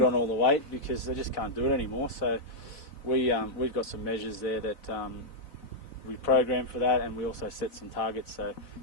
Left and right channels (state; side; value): late; right; 4.0 ms